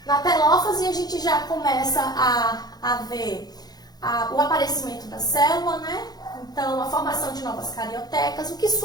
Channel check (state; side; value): late; right; 0.19 ms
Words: Na telófase, a gente já começa a ver o aparecimento da célula, né? Então, a formação de novas cariotecas, o que